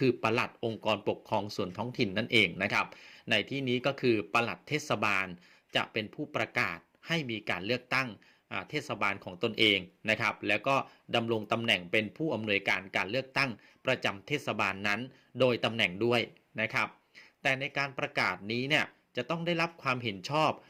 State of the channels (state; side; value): identical; both; correlation 1.00